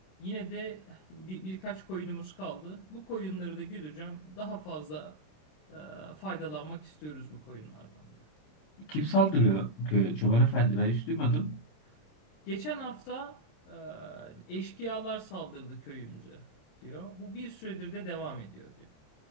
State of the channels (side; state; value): right; late; 27 ms